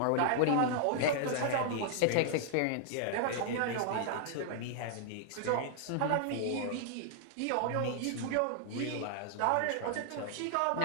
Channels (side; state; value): both; different; correlation 0.00